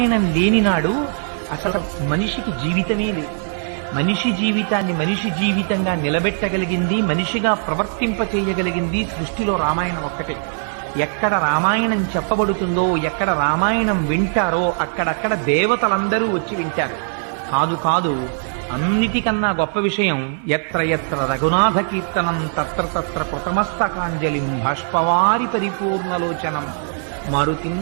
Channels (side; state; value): left; silent; 57 dB below the other